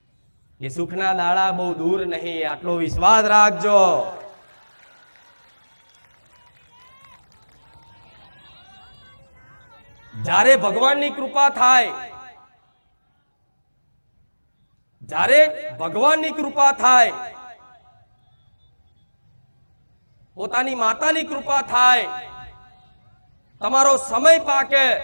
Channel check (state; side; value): inverted; both; correlation -1.00